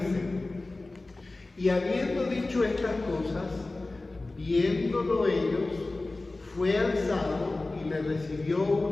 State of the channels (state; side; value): quieter; right; 3.1 dB